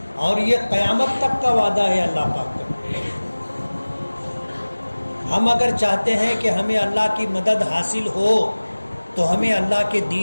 اور یہ قیامت تک کا وعدہ ہے اللہ پاک کا۔ ہم اگر چاہتے ہیں کہ ہمیں اللہ کی مدد حاصل ہو تو ہمیں اللہ کے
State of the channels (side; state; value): both; inverted; correlation -1.00